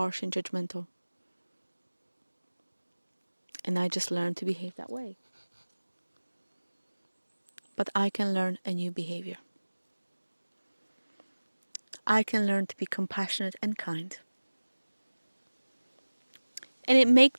and judgmental, and I just learned to behave that way. But I can learn a new behavior. I can learn to be compassionate and kind. And it may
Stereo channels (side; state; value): both; inverted; correlation -1.00